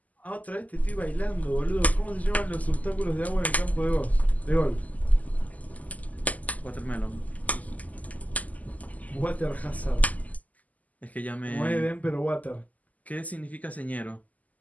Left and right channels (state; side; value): late; right; 0.076 ms